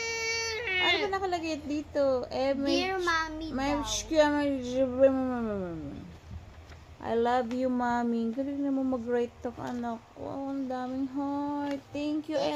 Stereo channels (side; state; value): both; identical; correlation 1.00